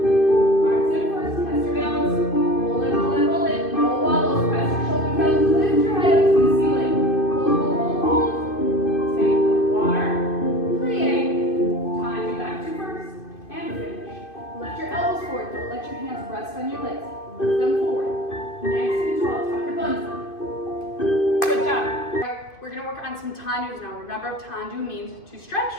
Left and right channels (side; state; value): right; late; 2.5 ms